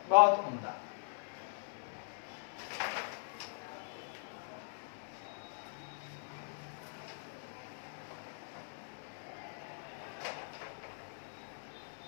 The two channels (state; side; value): silent; right; 51 dB below the other